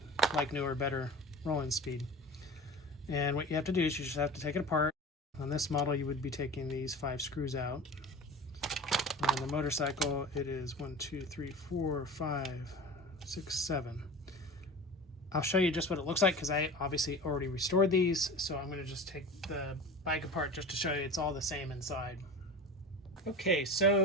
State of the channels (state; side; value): normal; both; correlation 0.34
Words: like new or better rolling speed. And what you have to do is you just have to take it apart. On this model, you would be taking these 5 screws out. On the motorcycle, it is 1, 2, 3, 4, 5, 6, 7. I'll show you just what it looks like because I obviously already restored these, so I'm going to just take the bike apart just to show you it's all the same inside. Okay,